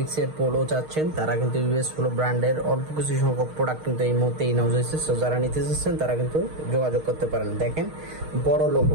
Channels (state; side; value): late; left; 6.4 ms